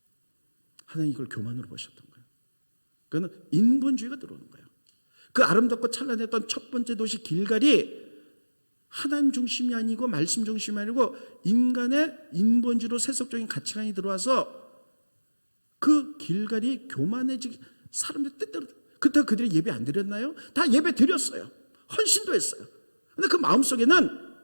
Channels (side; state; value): both; inverted; correlation -1.00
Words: 하나님 이걸 교만으로 보셨던 거예요. 그거는 인본주의가 들어오는 거예요. 그 아름답고 찬란했던 첫 번째 도시 길갈이 하나님 중심이 아니고 말씀 중심이 아니고 인간의 인본주의로 세속적인 가치관이 들어와서 그 길갈이 교만해지기, 사람들 뜻대로. 그렇다고 그들이 예배 안 드렸나요? 다 예배 드렸어요. 헌신도 했어요. 그런데 그 마음속에는